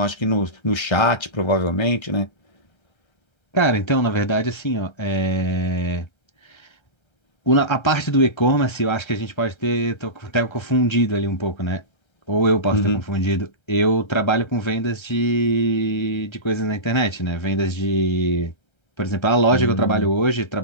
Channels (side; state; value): right; late; 1.3 ms